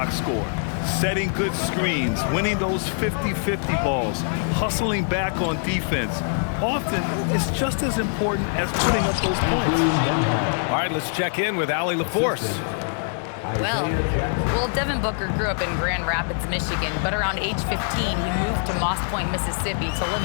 score. Setting good screens, winning those 50-50 balls, hustling back on defense. Often, it's just as important as putting up those points. All right, let's check in with Allie LaForce. Well, Devin Booker grew up in Grand Rapids, Michigan, but around age 15, he moved to Moss Point, Mississippi to live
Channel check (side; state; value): right; silent; digital silence